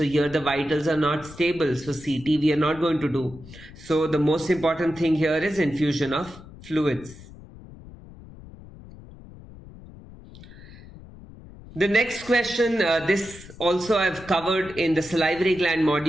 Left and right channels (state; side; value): noise; left; rumble, 18 dB below the sound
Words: here the vitals are not stable. So CT we are not going to do. So the most important thing here is infusion of fluids. The next question, this also I've covered in the salivary gland